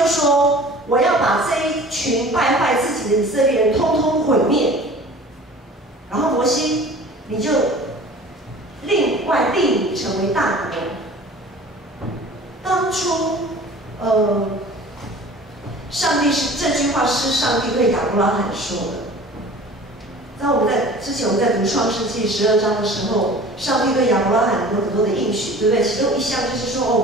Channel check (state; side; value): normal; both; correlation 0.44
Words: 说：我要把这一群败坏自己的以色列人通通毁灭。然后摩西，你就另外立你成为大国。当初，上帝这句话是上帝对亚伯拉罕说的。在之前我们在读创世纪12章的时候，上帝对亚伯拉罕有很多的应许，对不对？其中一项就是说，